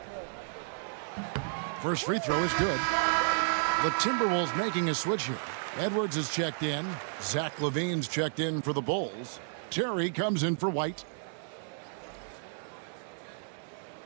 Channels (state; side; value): silent; left; digital silence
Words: First free throw is good. The Timberwolves making a switch here. Edwards is checked in. Zach LaVine's checked in for the Bulls. Terry comes in for White.